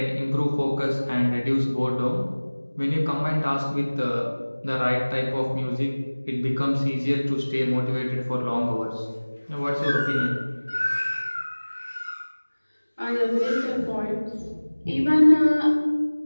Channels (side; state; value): both; inverted; correlation -1.00